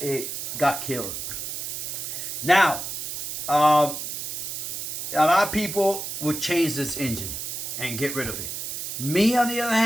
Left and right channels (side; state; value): right; noise; hiss, 5 dB below the sound